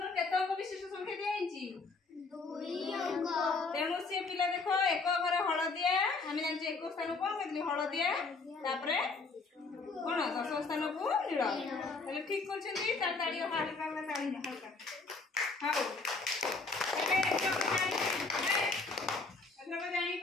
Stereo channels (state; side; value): quieter; right; 4.0 dB